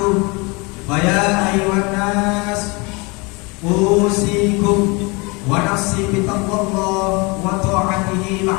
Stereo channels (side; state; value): right; quieter; 27.8 dB